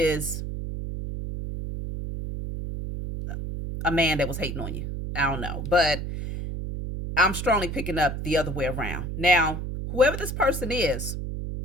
a man that was hating on you. I don't know, but I'm strongly picking up the other way around. Now, whoever this person is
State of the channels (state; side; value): noise; right; hum, 5 dB below the sound